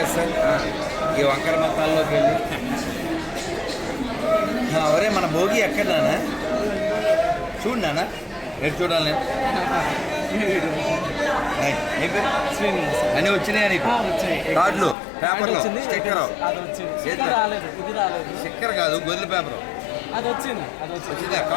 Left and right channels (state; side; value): drops out; right; at 15.0 s